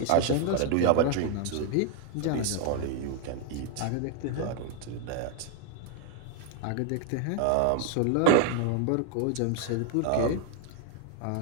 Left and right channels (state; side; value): different; both; correlation 0.01